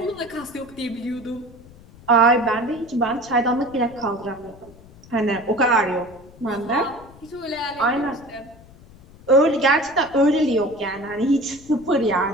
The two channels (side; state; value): left; noise; rumble, 22 dB below the sound